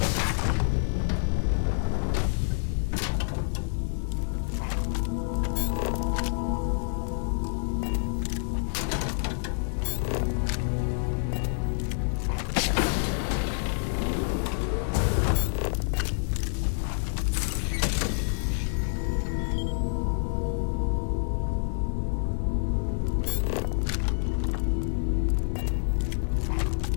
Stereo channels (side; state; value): right; silent; digital silence